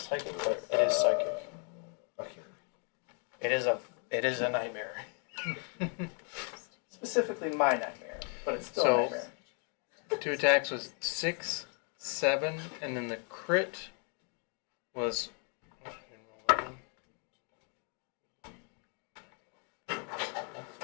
psychic, but it is psychic. Okay. It is a nightmare. Specifically my nightmare, but it's still So- a nightmare. 2 attacks was 6, 7, and then the crit was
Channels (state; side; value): quieter; right; 37.7 dB